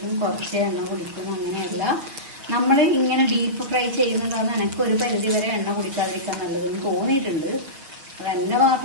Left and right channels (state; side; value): late; left; 6.6 ms